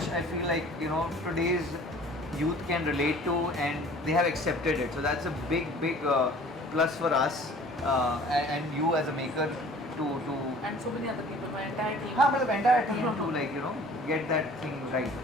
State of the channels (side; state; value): both; normal; correlation 0.49